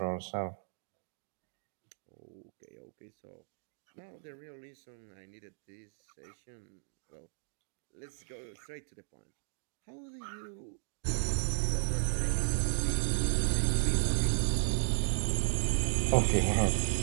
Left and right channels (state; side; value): silent; left; digital silence